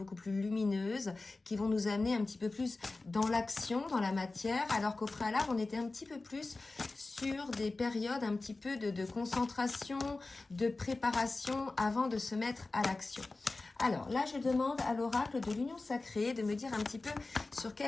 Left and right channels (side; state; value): right; quieter; 3.4 dB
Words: plus lumineuses, qui vont nous amener un petit peu plus dans l'action, dans la matière, alors qu'au préalable on était un petit peu plus sur des périodes un petit peu de concentration, de préparation avant de se mettre à l'action. Alors là, je demande à l'oracle de l'Union Sacrée de me dire un petit peu sur